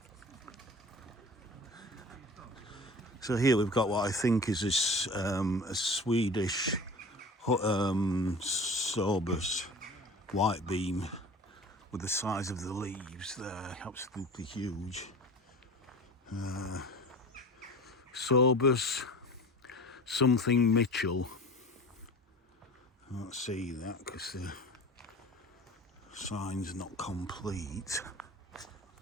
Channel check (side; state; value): both; normal; correlation 0.38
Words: So here we've got what I think is a Swedish Sorbus white beam with the size of the leaves there, absolutely huge. Sorbus something Mitchell. I can't see that because the sign's not complete.